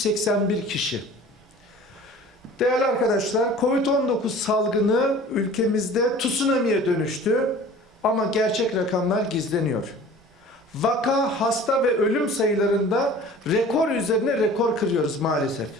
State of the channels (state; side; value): normal; both; correlation 0.44